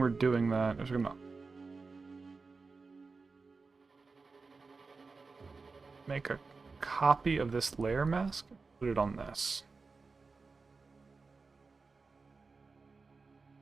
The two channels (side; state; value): left; quieter; 4.3 dB